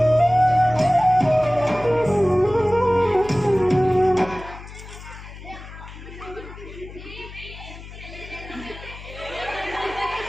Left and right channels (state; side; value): noise; left; hum, 15 dB below the sound